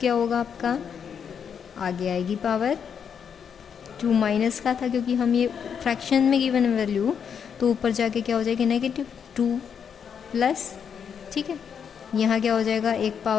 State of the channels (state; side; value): quieter; right; 7.3 dB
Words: होगा आपका, आगे आएगी पावर, 2 माइनस का था क्योंकि हम ये फ्रैक्शन में गिवन वैल्यू, तो ऊपर जाके क्या हो जाएगी, -2 प्लस। ठीक है, यहाँ क्या हो जाएगा, एक